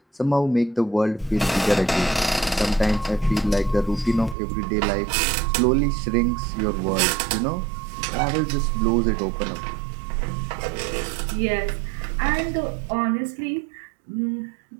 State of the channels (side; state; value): left; drops out; at 4.4 s